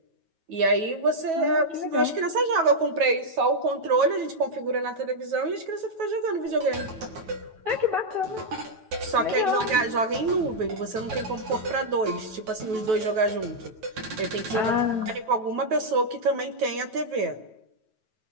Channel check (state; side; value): late; left; 9.2 ms